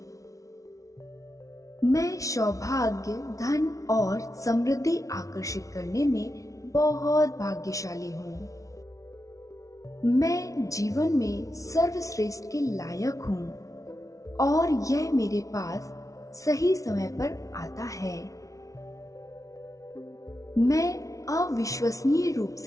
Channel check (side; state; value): right; late; 0.16 ms